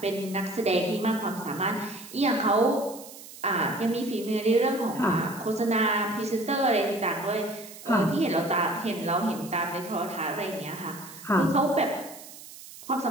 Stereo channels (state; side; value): noise; right; hiss, 16 dB below the sound